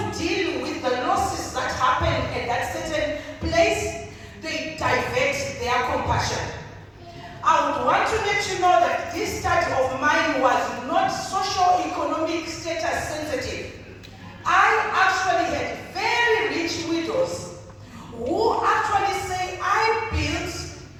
deal with the losses that happen at that certain place, they divert their compassion. I would want to let you know that this study of mine was not socio-economic status sensitive. I actually had very rich widows who actually say, I built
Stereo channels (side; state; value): both; identical; correlation 1.00